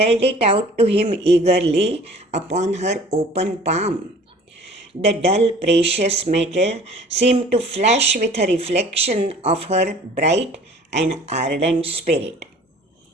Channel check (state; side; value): normal; both; correlation 0.48